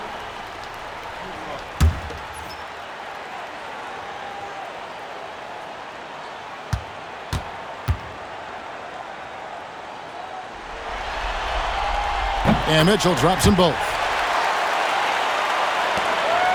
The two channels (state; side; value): identical; both; correlation 1.00